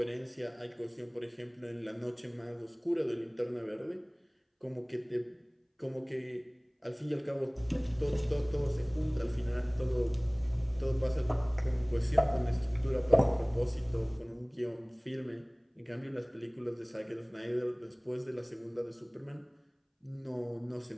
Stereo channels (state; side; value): identical; both; correlation 1.00